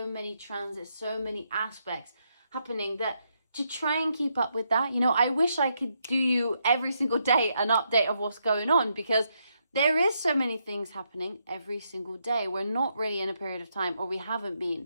many transits, so many aspects happening that to try and keep up with that, you know, I wish I could do you every single day an update of what's going on, because there is so many things happening every single day. We're not really in a period of time, or we haven't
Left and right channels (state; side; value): inverted; both; correlation -0.79